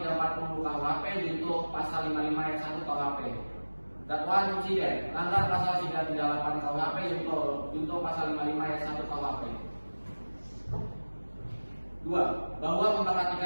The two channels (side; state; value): both; inverted; correlation -1.00